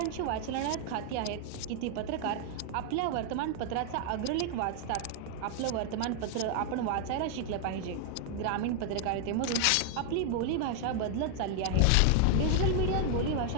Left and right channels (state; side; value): different; both; correlation 0.00